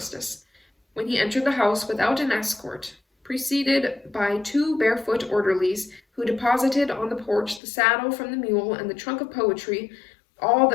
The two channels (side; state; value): right; drops out; at 7.6 s